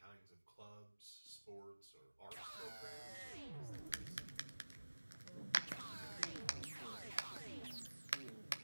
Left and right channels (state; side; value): inverted; both; correlation -1.00